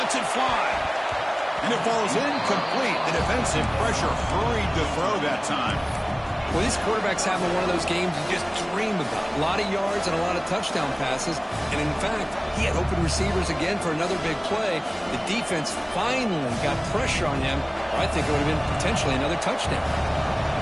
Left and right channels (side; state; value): both; identical; correlation 1.00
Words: it fly. And it falls incomplete. The defensive pressure hurried to throw that time. Well, these quarterbacks having one of those games you just dream about. A lot of yards and a lot of touchdown passes. And in fact, he had open receivers again for another big play. The defense finally got pressure on him. I think it would have been potentially another touchdown.